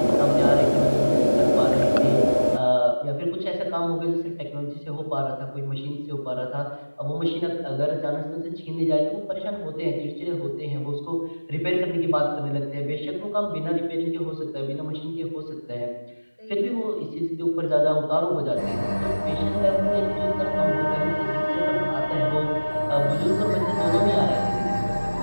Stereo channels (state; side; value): inverted; both; correlation -1.00